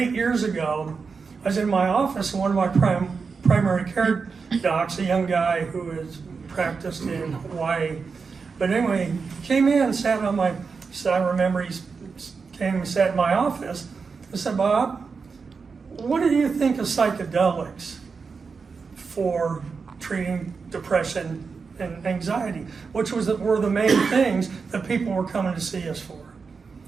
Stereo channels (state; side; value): quieter; left; 5.1 dB